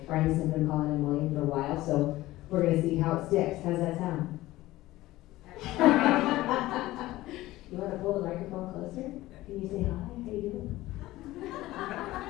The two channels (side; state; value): right; quieter; 17.1 dB